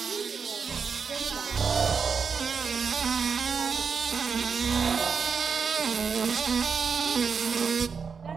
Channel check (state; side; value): quieter; left; 5.9 dB